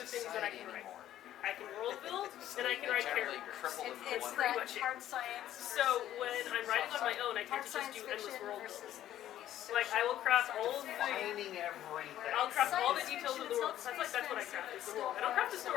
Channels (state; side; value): quieter; right; 12.3 dB